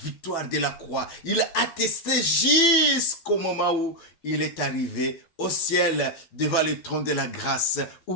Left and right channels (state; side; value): late; right; 12 ms